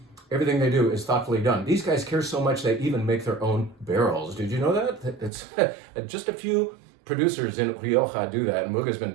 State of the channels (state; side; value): drops out; left; at 5.3 s